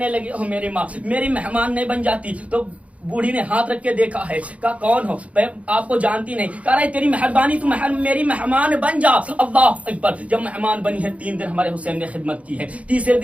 लगी ओ मेरी माँ, मेरी मेहमान नहीं बन जाती? तो बूढ़ी ने हाथ रख के देखा है, कहा कौन हो? मैं आपको जानती नहीं। कह रहा है तेरी मेहरबानी, तू मेरी मेहमान बन जा। अल्लाह अकबर। जब मेहमान बनी है, 3 दिन हमारे हुसैन ने खिदमत की है। तीसरे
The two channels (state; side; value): late; left; 0.065 ms